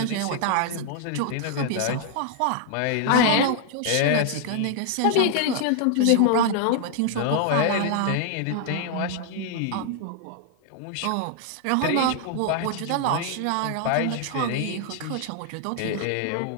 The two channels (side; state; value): both; different; correlation 0.00